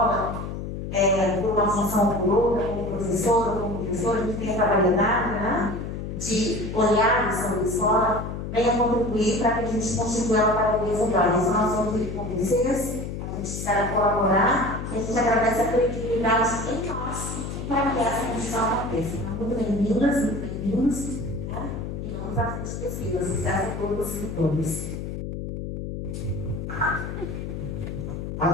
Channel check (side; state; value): left; noise; hum, 6 dB below the sound